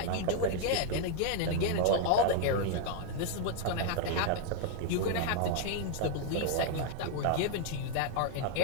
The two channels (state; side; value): different; both; correlation 0.00